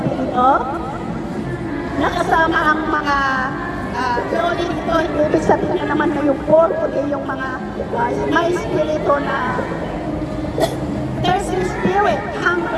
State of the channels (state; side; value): identical; both; correlation 1.00